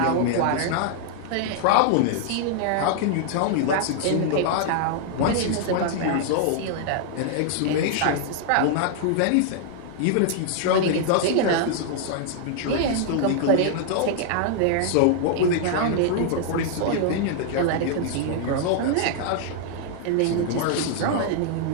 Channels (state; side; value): different; both; correlation -0.01